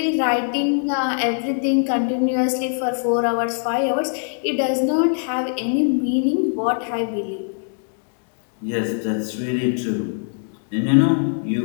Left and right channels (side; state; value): right; silent; digital silence